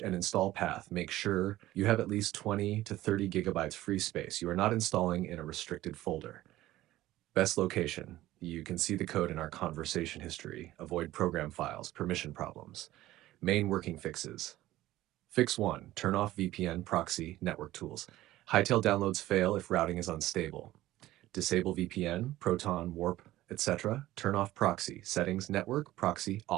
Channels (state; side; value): quieter; left; 15.7 dB